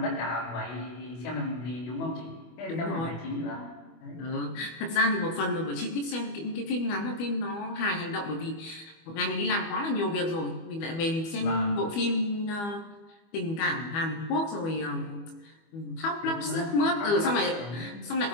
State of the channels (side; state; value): right; late; 25 ms